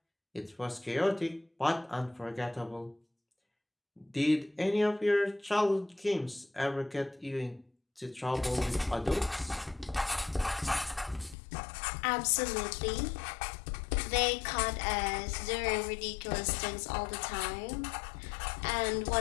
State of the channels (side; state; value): right; drops out; at 11.4 s